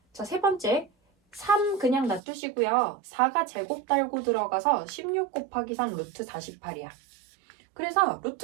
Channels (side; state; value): left; drops out; at 2.2 s